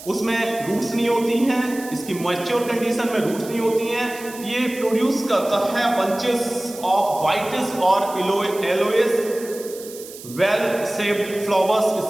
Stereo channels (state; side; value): noise; right; hiss, 15 dB below the sound